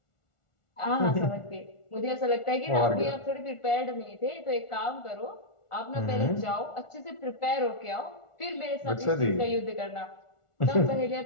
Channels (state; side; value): late; right; 1.4 ms